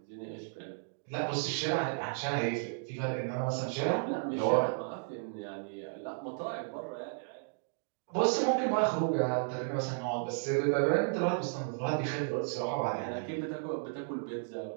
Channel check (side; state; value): left; silent; digital silence